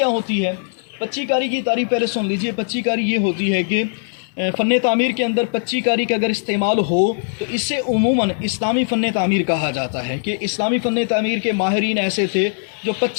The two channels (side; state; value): right; silent; digital silence